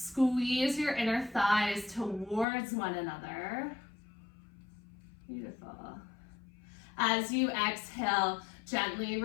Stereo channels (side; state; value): right; drops out; at 2.5 s